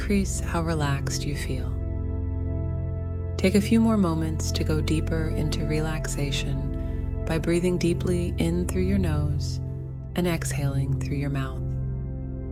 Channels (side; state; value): both; identical; correlation 1.00